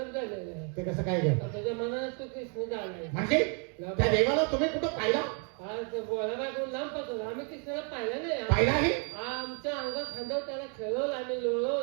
झालेलं आहे ते कसं काय घ्या तुझ्या मनात तू कृष्ण झालाय म्हणजे त्या देवाला तुम्ही कुठं पाहिला आज बोलायला कोण लांब पासून आम्ही कृष्णाला पाहिलं नाही पाहिलाही आमच्या अंगात खांद्यावर त्याला खेळवलं आम्ही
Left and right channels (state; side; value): quieter; left; 38.8 dB